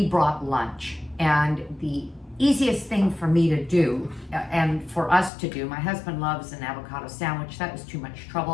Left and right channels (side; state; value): right; drops out; at 5.3 s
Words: brought lunch, and the easiest thing for me to do, and for us to do, my husband loves an avocado sandwich, that was too much